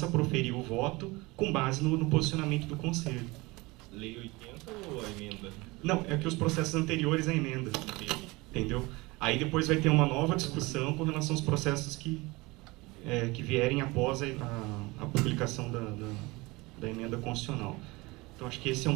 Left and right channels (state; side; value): quieter; left; 23.1 dB